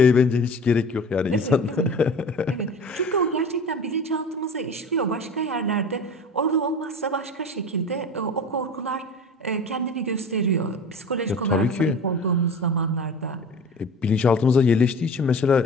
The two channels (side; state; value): both; normal; correlation 0.37